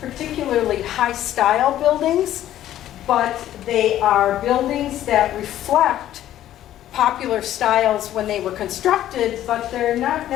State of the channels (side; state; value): right; quieter; 12.5 dB